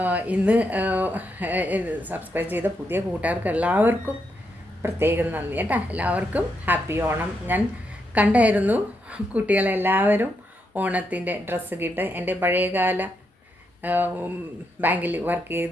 ഇന്ന് സബ്സ്ക്രൈബ് ചെയ്ത പുതിയ കൂട്ടുകാർക്ക് എല്ലാവർക്കും പ്രത്യേകം നന്ദി കേട്ടോ. എല്ലാവർക്കും ഹാപ്പി ഓണം. ഞാൻ കണ്ടായിരുന്നു കുട്ടികളെല്ലാവരും ഓണത്തിൻ്റെ ഡ്രസ്സ് കിട്ട്. എൻ്റെ പഴയകാല ബാങ്കിൽ വർക്ക്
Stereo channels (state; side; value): normal; both; correlation 0.81